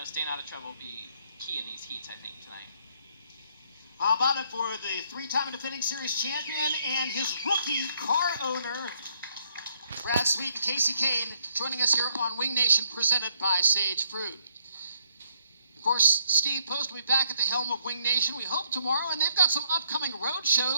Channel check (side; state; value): both; inverted; correlation -0.70